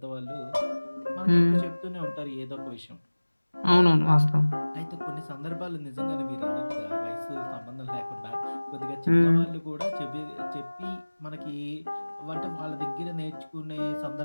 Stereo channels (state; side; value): inverted; both; correlation -1.00